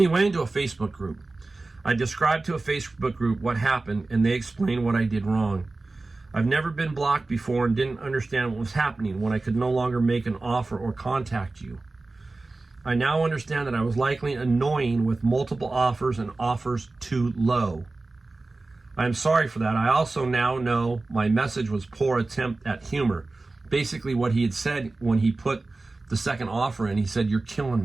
He went into a Facebook group. I described to a Facebook group what happened, and they explained what I did wrong. I've never been blocked before and didn't understand what was happening when I could no longer make an offer or contact you. I now understand that I was likely annoying with multiple offers and offers too low. I am sorry for that. I also now know my message was poor attempt at humor. Basically what he had said when he put the second offer in, he said, "You're killing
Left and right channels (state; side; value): quieter; left; 3.3 dB